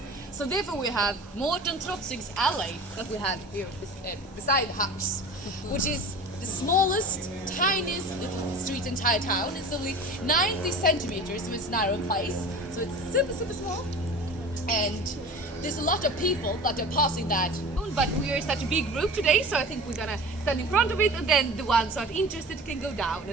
So therefore we have Morten Trotzig's alley that we have here beside the house, which is the smallest, tiniest little street in the entire town. It's only 90 centimeters, so it's a narrow place, so it's super, super small. And there's a lot of people that are passing that, but we are such a big group today, so I think we're gonna stand in front of it, and then the ones who are interested can go down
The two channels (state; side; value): normal; both; correlation 0.37